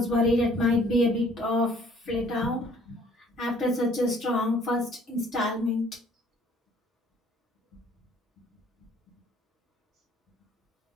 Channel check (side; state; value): both; normal; correlation 0.57